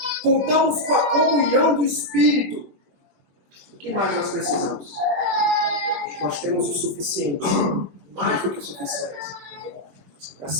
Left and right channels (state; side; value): late; left; 21 ms